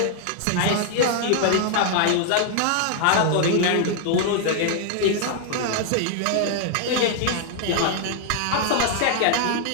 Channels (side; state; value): both; different; correlation -0.01